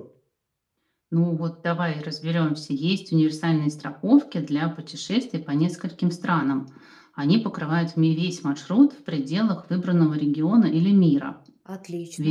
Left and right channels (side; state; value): both; identical; correlation 1.00